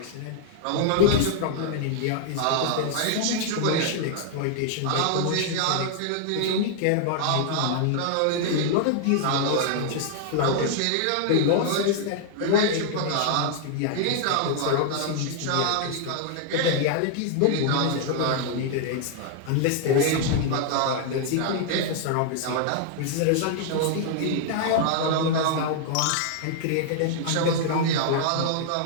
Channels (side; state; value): both; different; correlation 0.00